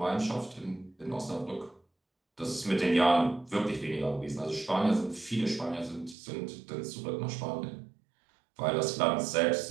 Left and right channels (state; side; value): drops out; left; at 6.2 s